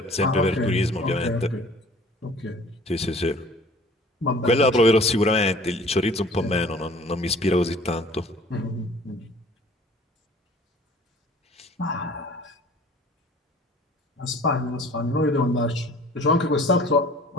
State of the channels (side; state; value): both; normal; correlation 0.49